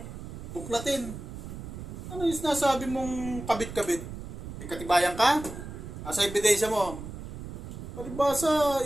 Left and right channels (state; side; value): noise; right; rumble, 10 dB below the sound